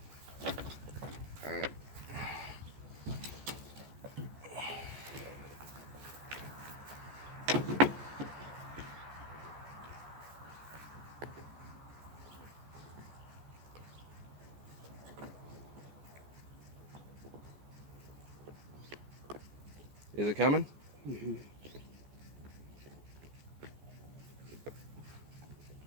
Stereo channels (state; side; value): late; left; 14 ms